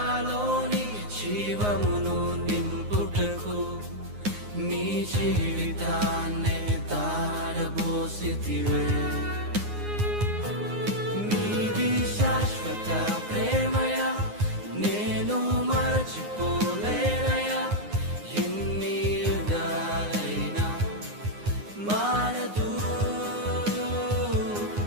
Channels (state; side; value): late; left; 9.7 ms